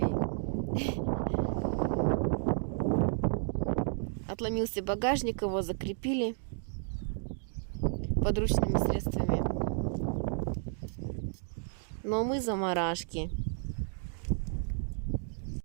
Отломился багажник, его закрепили подручными средствами. Но мы заморашки.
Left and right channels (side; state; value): left; silent; 56 dB below the other